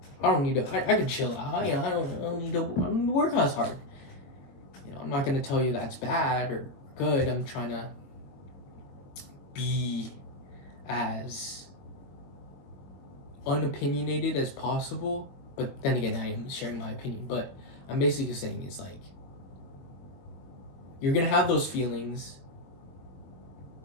I don't need to. I can chill out. I don't need to work as hard. I'm not gonna tell you that's bad or good. I'm trying to be as unopinionated as possible. But then again, I am sharing my opinion. But I'm basically saying it's like, you're gonna have those feelings,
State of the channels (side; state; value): right; late; 22 ms